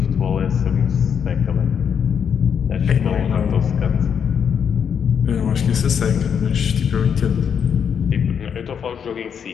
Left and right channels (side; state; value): right; quieter; 7.5 dB